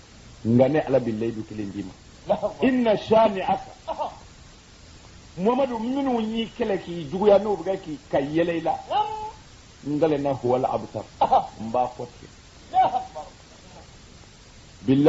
nka ne Ala bɛ layidu kelen d'i ma inna shani'aka Mamadu minnu y'i kɛlɛ k'i juguya n'o bɛ k'i ka yɛlɛ i la ngalena huwal abtar n b'a fɔ ten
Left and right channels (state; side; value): identical; both; correlation 1.00